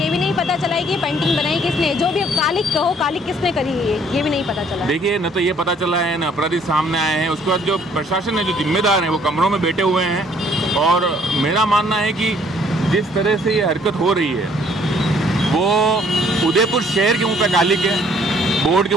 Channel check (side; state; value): both; normal; correlation 0.61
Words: भी नहीं पता चला है कि पेंटिंग बनाई किसने, जो भी कालिक कहो, कालिक किसने करी है ये भी नहीं पता चला। देखिए, न तो ये पता चला है, न अपराधी सामने आए हैं। उसके बाद जो प्रशासन है, जो जिम्मेदार हैं, वो कमरों में बैठे हुए हैं। और मेरा मानना है कि जिस तरह से ये हरकत हो रही है वो उदयपुर शहर के मुँह पे कालिक है, बोर्ड के